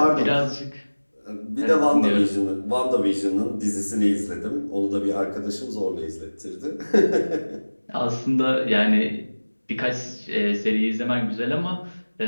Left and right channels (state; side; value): inverted; both; correlation -1.00